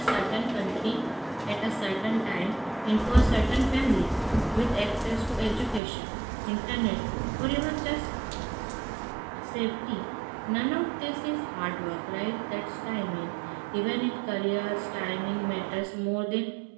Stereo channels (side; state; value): left; drops out; at 5.8 s